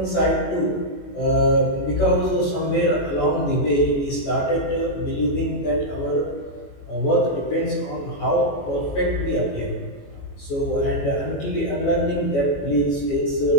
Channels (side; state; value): right; late; 21 ms